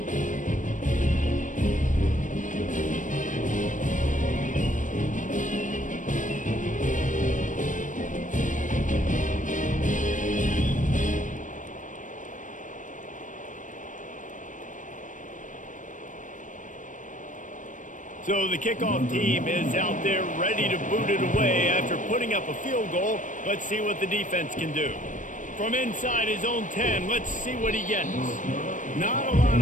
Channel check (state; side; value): late; right; 0.37 ms